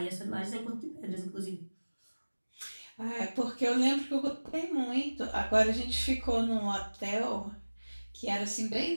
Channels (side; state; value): both; inverted; correlation -1.00